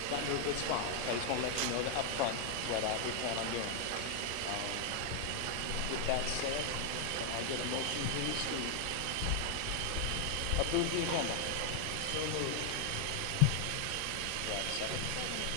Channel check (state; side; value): different; both; correlation 0.00